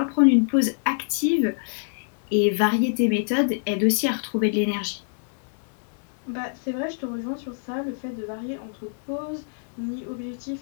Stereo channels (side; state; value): right; silent; digital silence